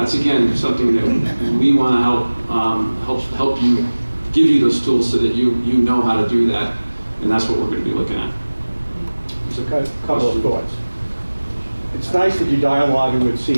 again something that we want to help you, give you those tools so that you know how to do that, and that's what we're going to be looking at. Just a couple of thoughts. It's nice that you're dialoguing with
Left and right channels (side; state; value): both; inverted; correlation -1.00